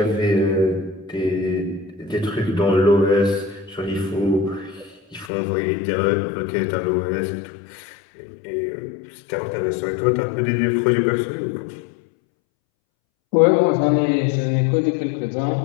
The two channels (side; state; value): right; drops out; at 5.3 s